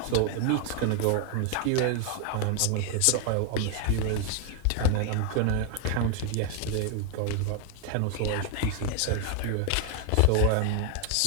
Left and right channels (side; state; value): both; different; correlation 0.00